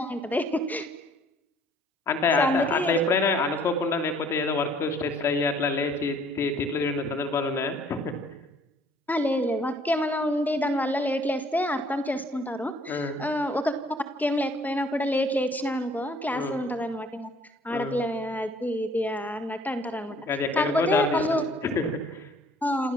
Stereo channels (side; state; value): both; normal; correlation 0.58